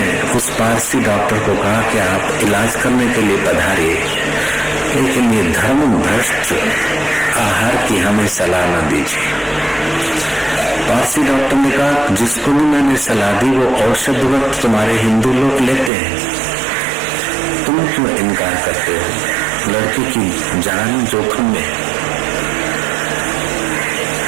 उस पारसी डॉक्टर को कहा कि आप इलाज करने के लिए पधारिए, लेकिन ये धर्म भ्रष्ट आहार की हमें सलाह न दीजिए। पारसी डॉक्टर ने कहा जिसको भी मैंने सलाह दी वो औषध वक्त तुम्हारे हिंदू लोग लेते हैं, तुम क्यों इनकार करते हो? लड़के की जान जोखिम में।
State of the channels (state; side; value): drops out; left; at 15.9 s